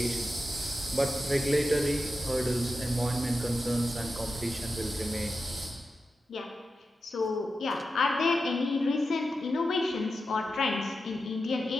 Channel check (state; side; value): normal; both; correlation 0.90